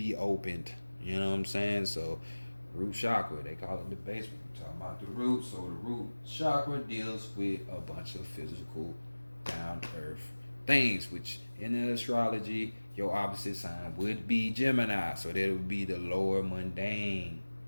opened. You know what I'm saying? So, root chakra, they call it the basement. We're talking about the root. So the root chakra deals with a bunch of physical, down to earth things, which in the astrology, your opposite sign would be Gemini. So that would be the lower mundane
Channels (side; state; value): both; inverted; correlation -1.00